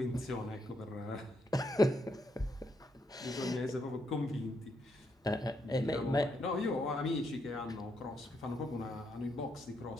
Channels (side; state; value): both; normal; correlation 0.78